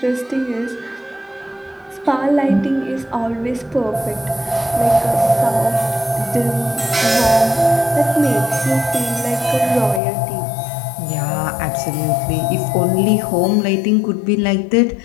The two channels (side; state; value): right; drops out; at 10.0 s